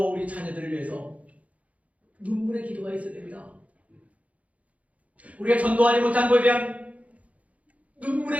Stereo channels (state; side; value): late; left; 0.068 ms